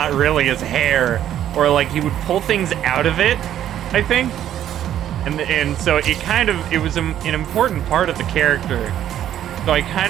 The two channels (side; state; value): left; quieter; 11.1 dB